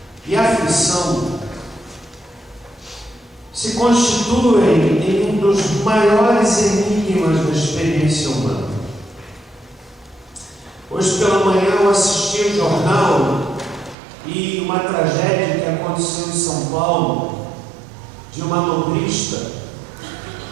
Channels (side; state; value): left; drops out; at 14.0 s